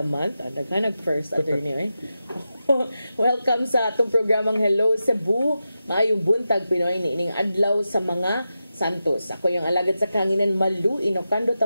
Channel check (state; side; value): inverted; both; correlation -0.90